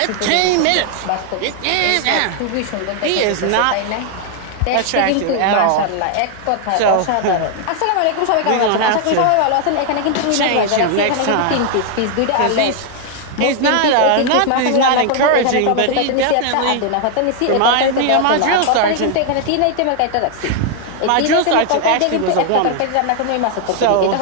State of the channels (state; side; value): different; both; correlation 0.00